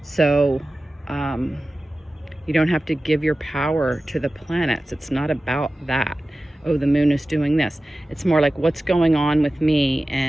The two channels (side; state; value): both; normal; correlation 0.96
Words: So you don't have to give your power to the planets. It's not about that. Oh, the moon is doing this. It's more like, what's going on with me,